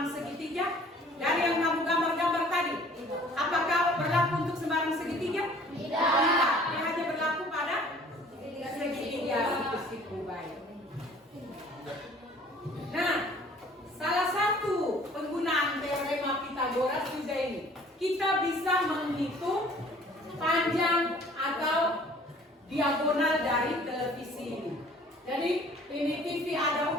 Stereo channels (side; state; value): both; normal; correlation 0.53